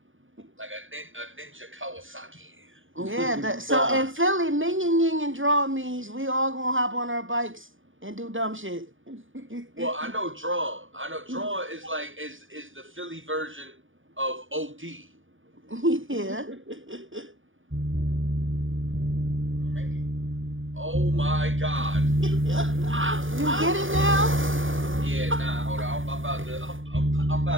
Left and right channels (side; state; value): left; late; 0.57 ms